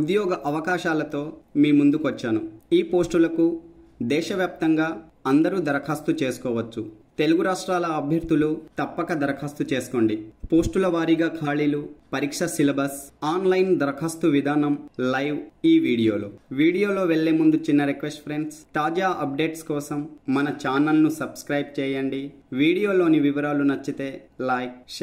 అవకాశాలతో మీ ముందుకు వచ్చాను. ఈ పోస్టులకు దేశవ్యాప్తంగా అందరూ దరఖాస్తు చేసుకోవచ్చు. తెలుగు రాష్ట్రాల అభ్యర్థులు తప్పక దరఖాస్తు చేసుకోండి. పోస్టుల వారీగా ఖాళీలు, పరీక్ష సిలబస్, ఆన్లైన్ దరఖాస్తు విధానం లైవ్ ఈ వీడియోలో వెళ్లే ముందు చిన్న రిక్వెస్ట్ ఫ్రెండ్స్, తాజా అప్డేట్స్ కోసం మన ఛానల్ను సబ్స్క్రైబ్ చేయండి. వీడియోలోని వివరాలు నచ్చితే లైక్,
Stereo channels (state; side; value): identical; both; correlation 1.00